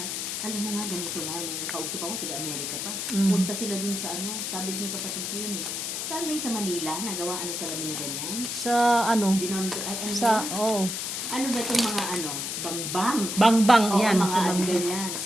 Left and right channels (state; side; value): noise; left; hiss, 3 dB below the sound